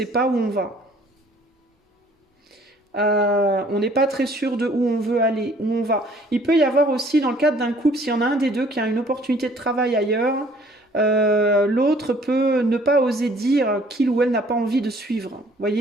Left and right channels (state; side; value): normal; both; correlation 0.57